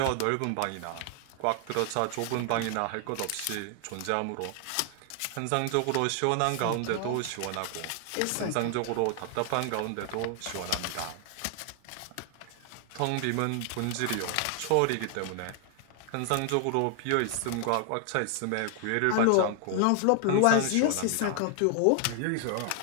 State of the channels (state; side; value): different; both; correlation 0.00